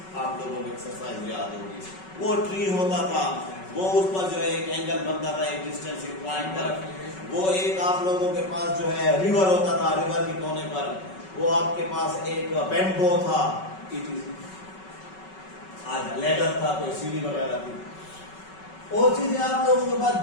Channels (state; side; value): late; right; 5.3 ms